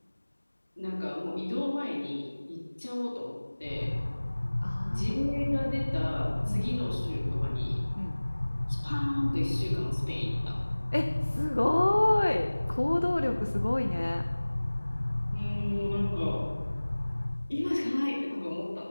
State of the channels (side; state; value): both; inverted; correlation -1.00